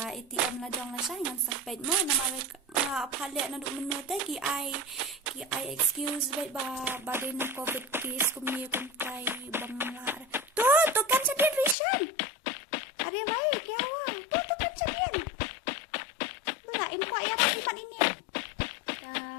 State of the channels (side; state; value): right; drops out; at 11.8 s